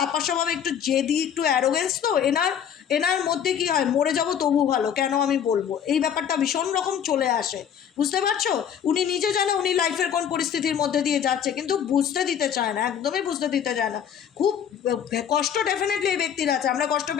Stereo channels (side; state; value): right; quieter; 8.6 dB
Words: স্বভাবে, একটু জেদি, একটু অ্যারোগেন্স তো এনার মধ্যে কি হয়, মরে যাব তবু ভালো, কেন আমি বলবো, এই ব্যাপারটা ভীষণ রকম চলে আসে, বুঝতে পারছো? উনি নিজে জানে উনি লাইফের কোন পরিস্থিতির মধ্যে দিয়ে যাচ্ছে, কিন্তু বুঝতে দিতে চায় না, একদমই বুঝতে দিতে চায় না। খুব কষ্ট ডেফিনেটলি এই ব্যক্তির আছে। আমরা কষ্ট